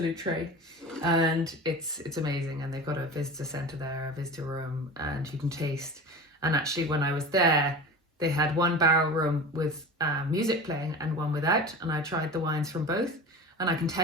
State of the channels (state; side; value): normal; both; correlation 0.33